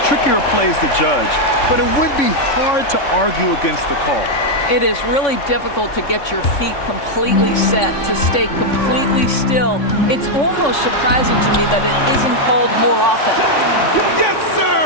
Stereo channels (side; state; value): right; late; 3.6 ms